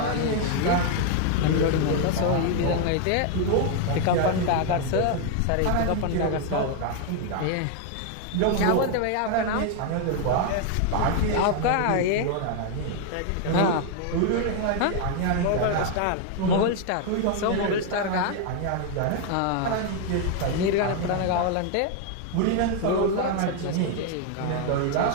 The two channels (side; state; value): both; different; correlation 0.00